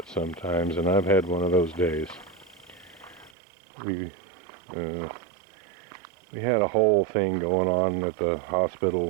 sometimes, and I've had one of those days. We had a whole thing going on at the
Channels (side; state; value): left; drops out; at 3.3 s